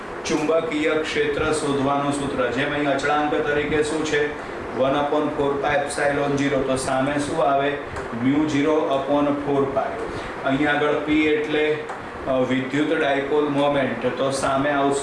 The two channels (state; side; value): identical; both; correlation 1.00